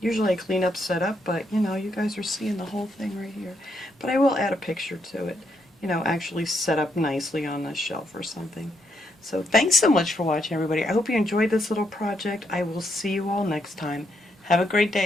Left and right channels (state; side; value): normal; both; correlation 0.77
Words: I clean up, set up, but you know, you guys are seeing the whole thing right here. But I will add a picture to it, you know, actually set up nicely on a shelf or something. So thanks so much for watching, everybody. I hope you enjoyed this little project. I will see you all next time. Have a great